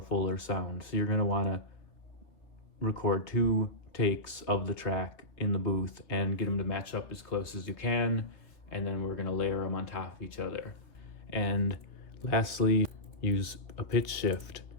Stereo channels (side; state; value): right; late; 3.4 ms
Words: fuller sound, so you're going to want to record 2 takes of the track in the booth and get them to match up as close as you can, and then we're going to layer them on top of each other. And lastly, use a pitch shift